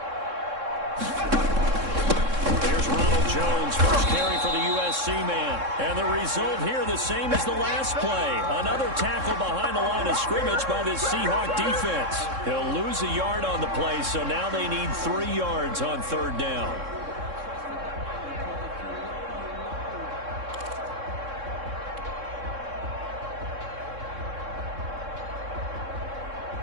There's Ronald Jones, first carry for the USC man. And the result here the same as the last play. Another tackle behind the line of scrimmage by this Seahawk defense. He'll lose a yard on the play, so now they need 3 yards on 3rd down.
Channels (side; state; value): left; late; 3.6 ms